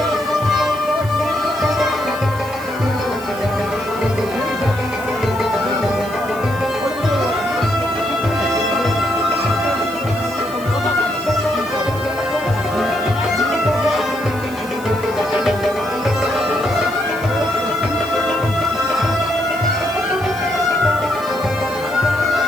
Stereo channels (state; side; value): noise; right; hiss, 19 dB below the sound